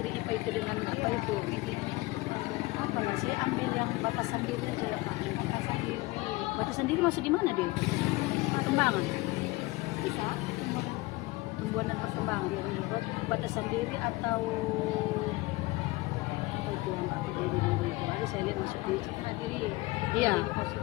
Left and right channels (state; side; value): quieter; right; 21.2 dB